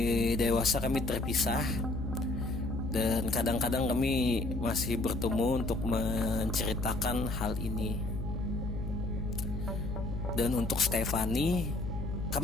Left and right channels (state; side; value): noise; left; hum, 5 dB below the sound